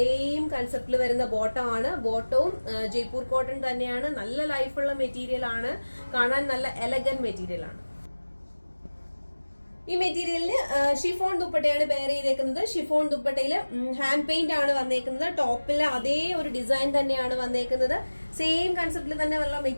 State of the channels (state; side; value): inverted; both; correlation -1.00